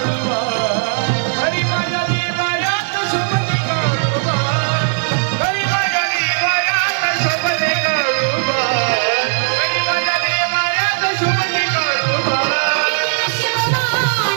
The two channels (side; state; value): left; silent; 68 dB below the other